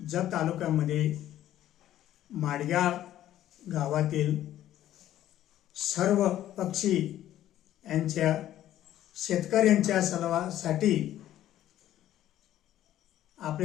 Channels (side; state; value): right; quieter; 12.6 dB